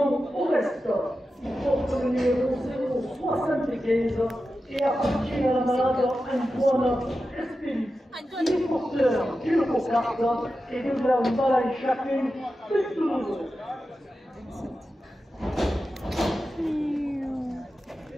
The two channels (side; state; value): both; normal; correlation 0.92